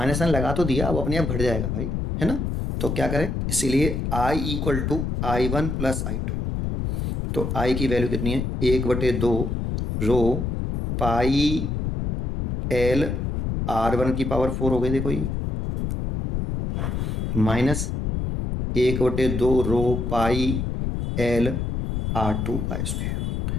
साइन लगा तो दिया, अब अपने आप घट जाएगा भाई, है ना। तो क्या करें, इसीलिए I equal to I1 plus I2, तो I की वैल्यू कितनी है 1/2 रो पाई L R1 की पावर 4 हो गई, देखो ये माइनस 1/2 रो पाई L R2 का स्क्वायर,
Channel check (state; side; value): noise; left; rumble, 1 dB below the sound